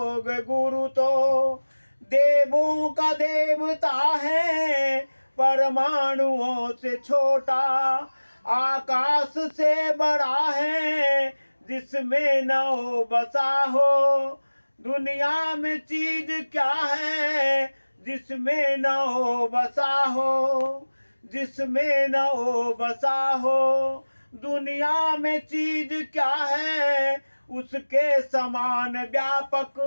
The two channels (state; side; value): inverted; both; correlation -1.00